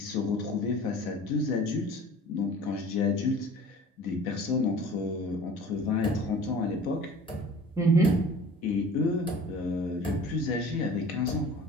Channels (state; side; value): normal; both; correlation 0.44